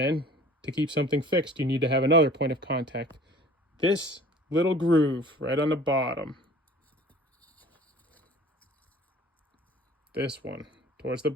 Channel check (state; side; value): normal; both; correlation 0.47